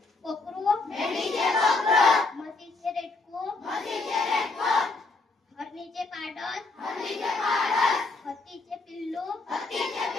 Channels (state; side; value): quieter; right; 3.5 dB